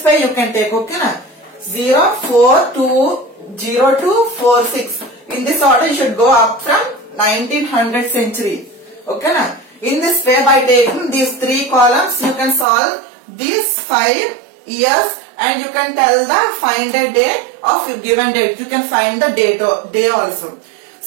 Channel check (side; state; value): left; drops out; at 12.7 s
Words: way you can take. Okay, na? 0, 4, 2, 0, 2, 4, 6. In this order you should go up from 1900 century. Okay, na? In this way, by taking these 3 columns, you can solve these 5 years, and you can tell the find a day of a given date. You can find the day also.